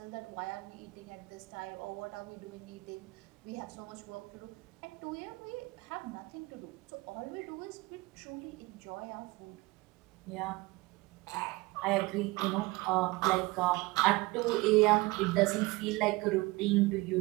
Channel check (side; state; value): left; quieter; 22.3 dB